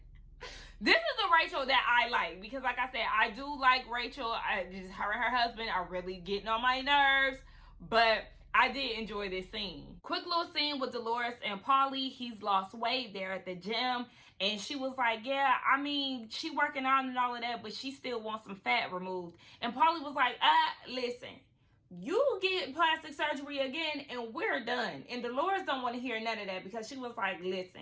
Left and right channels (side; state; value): both; identical; correlation 1.00